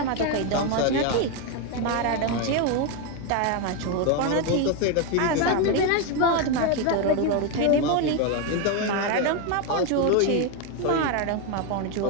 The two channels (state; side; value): different; both; correlation 0.02